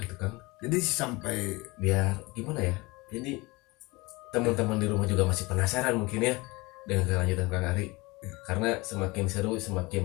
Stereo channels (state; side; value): quieter; right; 23.7 dB